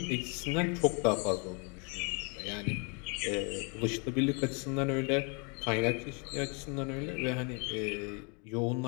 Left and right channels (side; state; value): right; quieter; 34.3 dB